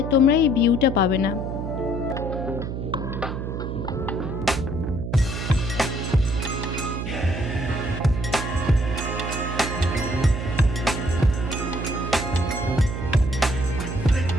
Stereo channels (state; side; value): noise; right; hum, 4 dB below the sound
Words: তোমরা এই ভিউটা পাবে না।